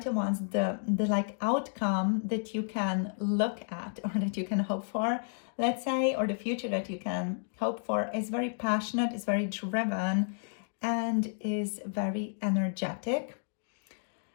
of Wands, the like outcome that you can look at or that you can hope for, let's say, or the future that you can hope for is very passionate, is very driven, and is very energetic.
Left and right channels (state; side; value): silent; right; digital silence